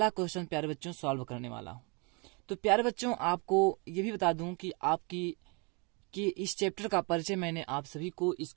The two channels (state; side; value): quieter; left; 32.1 dB